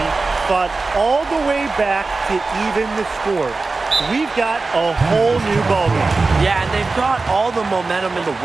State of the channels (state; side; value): quieter; left; 3.8 dB